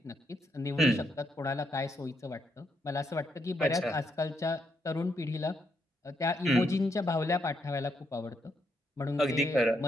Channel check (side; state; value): both; normal; correlation 0.77